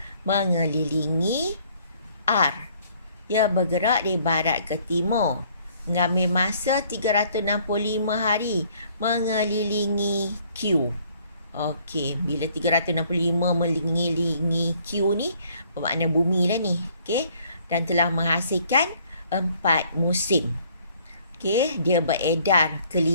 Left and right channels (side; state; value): both; inverted; correlation -0.62